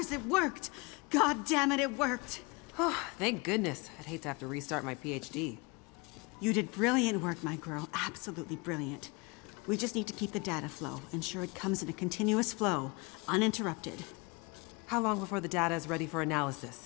It worked. God damn it, it worked. Oh, thank goodness. I'd hate to have to restart my PhD. You did brilliant work, my girl. Absolutely brilliant. We just need to keep the data flow, ensure it comes in a continuous flow, uninterrupted. How long before the data is ready for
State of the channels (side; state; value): right; quieter; 28.1 dB